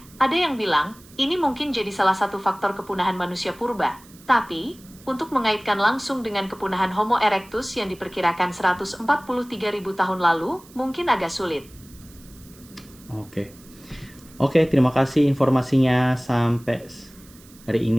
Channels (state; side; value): noise; right; hiss, 24 dB below the sound